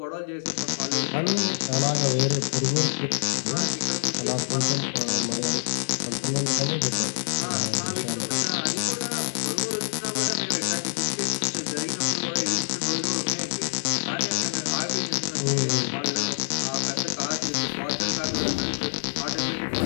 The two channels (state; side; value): silent; right; digital silence